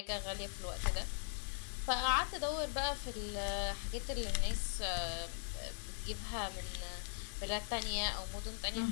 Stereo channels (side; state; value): right; silent; digital silence